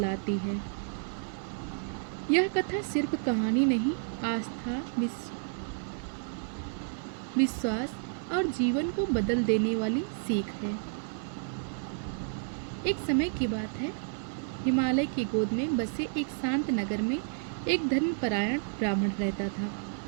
है। यह कथा सिर्फ कहानी नहीं, आस्था, विश्वास और जीवन को बदल देने वाली सीख है। एक समय की बात है, हिमालय की गोद में बसे एक शांत नगर में एक धर्मपरायण ब्राह्मण रहता था।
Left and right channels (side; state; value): left; silent; digital silence